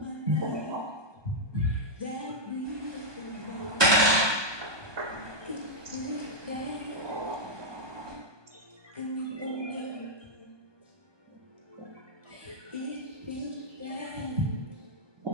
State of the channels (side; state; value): left; late; 1.2 ms